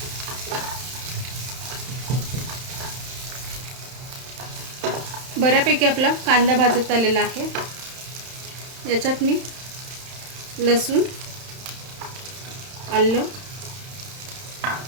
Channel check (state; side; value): late; left; 31 ms